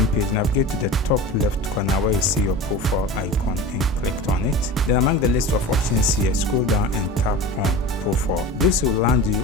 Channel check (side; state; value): both; normal; correlation 0.33